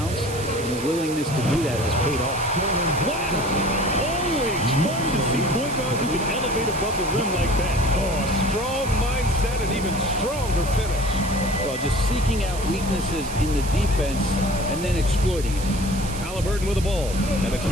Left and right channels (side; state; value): right; noise; hiss, 11 dB below the sound